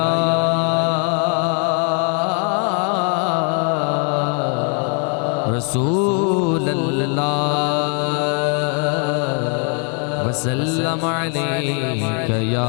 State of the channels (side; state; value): right; quieter; 38.4 dB